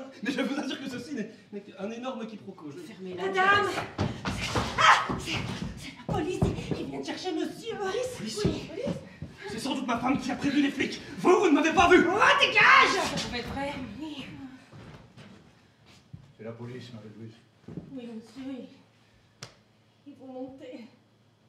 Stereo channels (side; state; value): both; identical; correlation 1.00